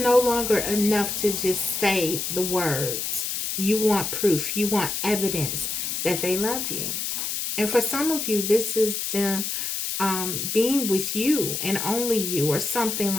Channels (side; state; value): left; noise; hiss, 2 dB below the sound